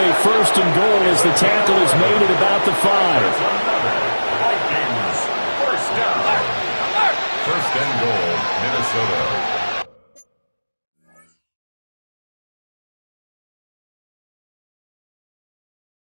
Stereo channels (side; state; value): both; inverted; correlation -1.00